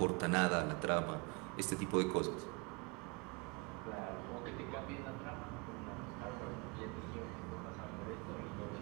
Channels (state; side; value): quieter; left; 29.0 dB